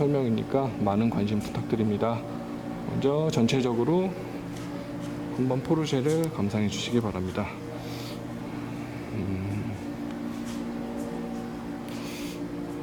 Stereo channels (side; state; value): both; identical; correlation 1.00